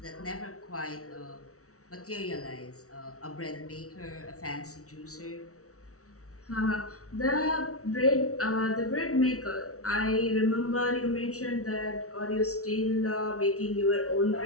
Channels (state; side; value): late; right; 0.65 ms